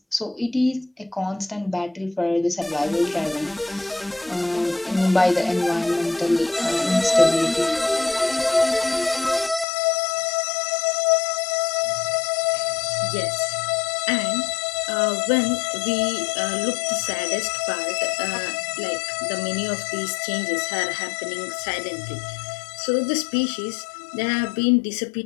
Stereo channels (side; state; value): right; drops out; at 9.7 s